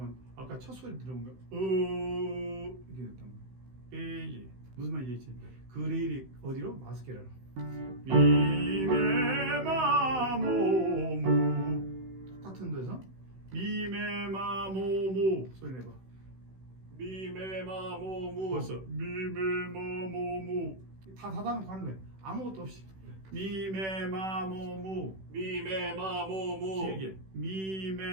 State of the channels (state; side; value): late; left; 16 ms